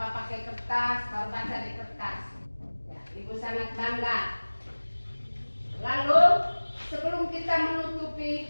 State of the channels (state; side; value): inverted; both; correlation -1.00